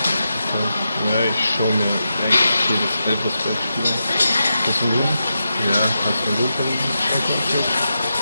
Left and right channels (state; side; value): inverted; both; correlation -0.88